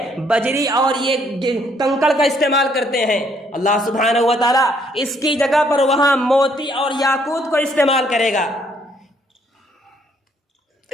بجری اور یہ کنکڑ کا استعمال کرتے ہیں، اللہ سبحانہ و تعالی اس کی جگہ پر وہاں موتی اور یاقوت کو استعمال کرے گا۔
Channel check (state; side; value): normal; both; correlation 0.67